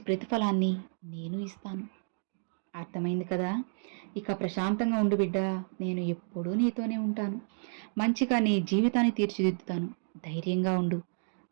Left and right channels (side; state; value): left; silent; digital silence